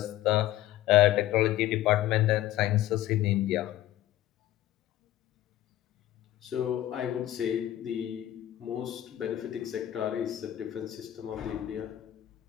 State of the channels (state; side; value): quieter; right; 13.7 dB